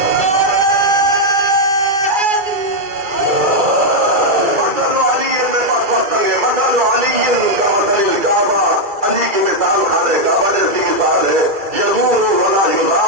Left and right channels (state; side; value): late; left; 2.3 ms